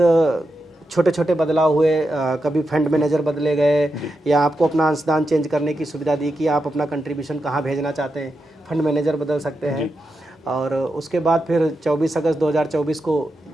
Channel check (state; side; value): normal; both; correlation 0.87